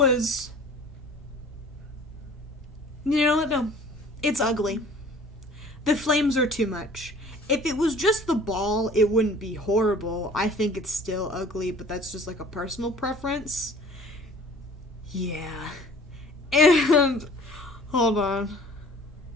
You know what? No. It's ugly. The flames are too much. If it was just the ball, it wouldn't be horrible. I think it's still ugly, but that's just like a personal preference. Yeah. And... Hold on.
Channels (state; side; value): normal; both; correlation 0.48